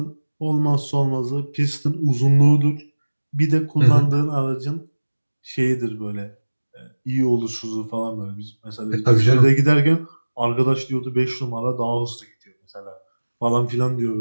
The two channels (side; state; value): both; inverted; correlation -1.00